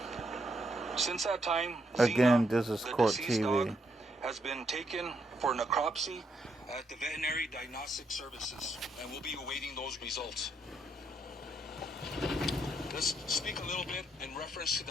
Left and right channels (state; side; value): normal; both; correlation 0.76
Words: Since that time, Again, Xena, this is the Court deceased dog, TV. has been taken for necropsy at the Veterinary Diagnostic Services, and we'll be awaiting those results. Let's speak a little bit in reference to